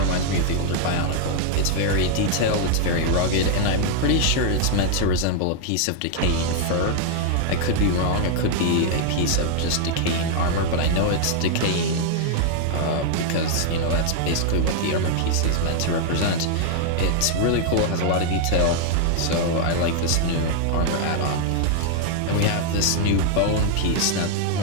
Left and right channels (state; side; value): different; both; correlation 0.00